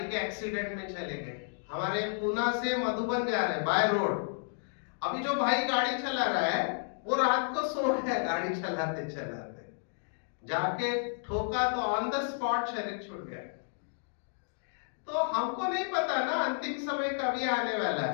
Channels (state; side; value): silent; right; digital silence